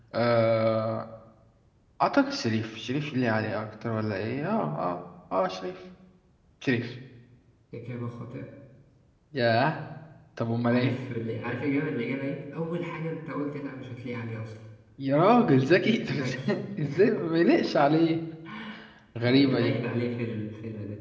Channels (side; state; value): both; identical; correlation 1.00